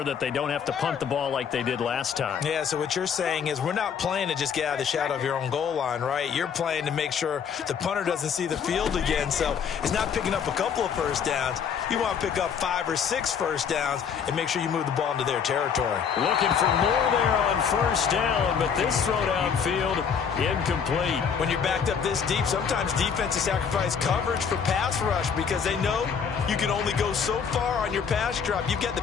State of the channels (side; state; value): right; quieter; 7.0 dB